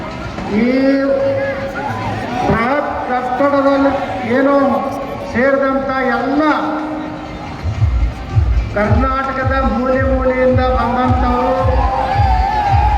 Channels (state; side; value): identical; both; correlation 1.00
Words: ಈ ಬೃಹತ್ ಕಟ್ಟಡದಲ್ಲಿ ಏನು ಸೇರಿದಂಥ ಎಲ್ಲ ಕರ್ನಾಟಕದ ಮೂಲೆಯಿಂದ ಬಂದಂಥವರು